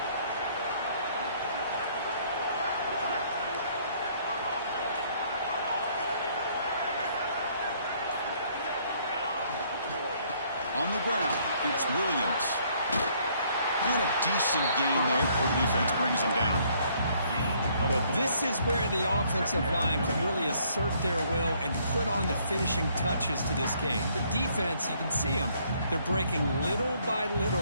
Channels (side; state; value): both; inverted; correlation -0.65